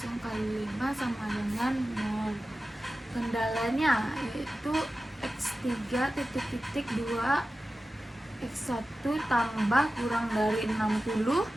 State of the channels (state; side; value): normal; both; correlation 0.94